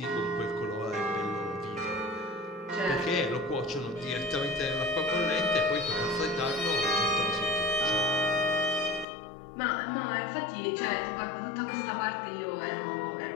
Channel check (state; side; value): drops out; right; at 9.1 s